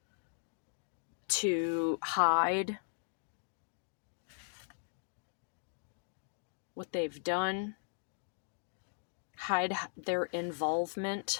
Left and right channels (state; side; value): silent; right; digital silence